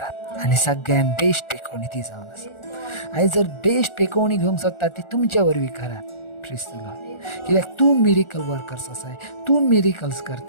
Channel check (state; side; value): late; right; 1.4 ms